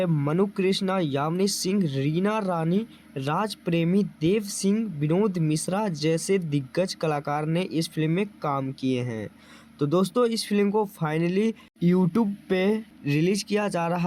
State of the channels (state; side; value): identical; both; correlation 1.00